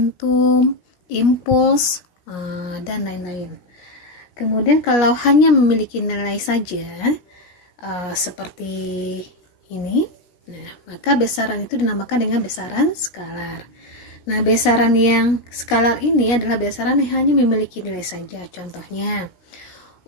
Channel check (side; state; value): right; late; 17 ms